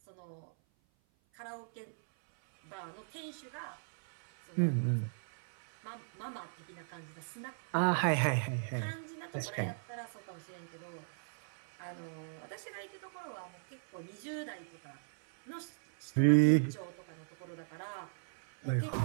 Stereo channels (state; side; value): silent; left; 53 dB below the other